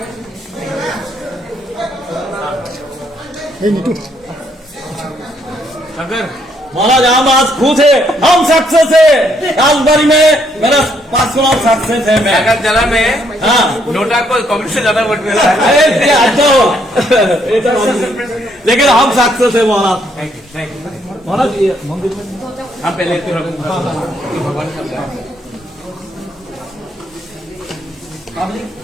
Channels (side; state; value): both; normal; correlation 0.71